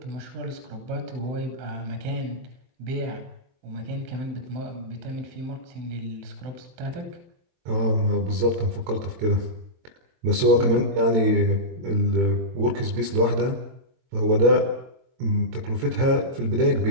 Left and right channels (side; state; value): left; late; 23 ms